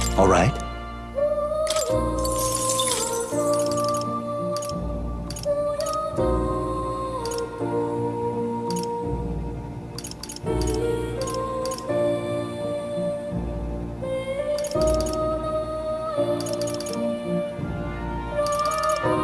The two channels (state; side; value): identical; both; correlation 1.00